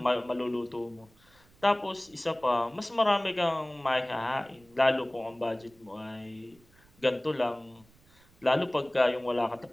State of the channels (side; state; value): right; noise; rumble, 29 dB below the sound